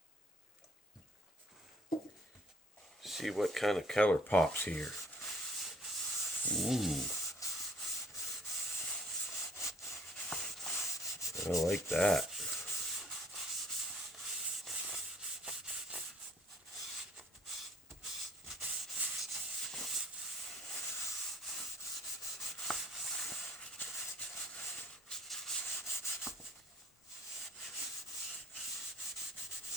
See what kind of color pops here. Ooh, I like that.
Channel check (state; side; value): normal; both; correlation 0.57